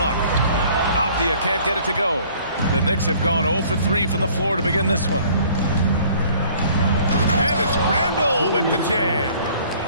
Avdia can't get it to go. The Knicks have gone 0 for 3 from the floor to begin this one. And it's Randall with the jam.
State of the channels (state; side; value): inverted; both; correlation -0.55